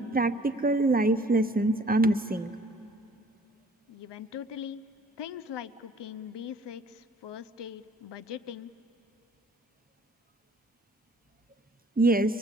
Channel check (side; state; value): both; normal; correlation 0.55